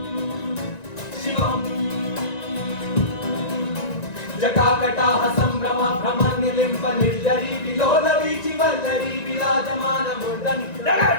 जटाकटाह संभ्रम भ्रम निलिम्ब निर्जरी विलोल वीचि वल्लरी विराजमान मूर्धनि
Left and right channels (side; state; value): right; late; 1.9 ms